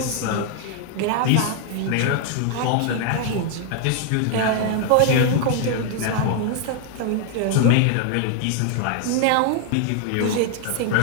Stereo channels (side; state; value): both; different; correlation 0.00